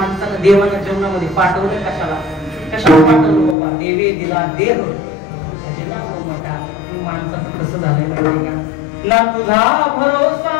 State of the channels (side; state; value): right; drops out; at 3.6 s